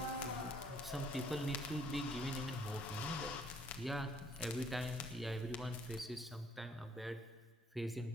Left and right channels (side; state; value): both; normal; correlation 0.64